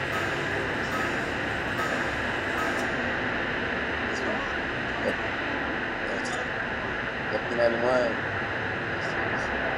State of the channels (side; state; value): both; identical; correlation 1.00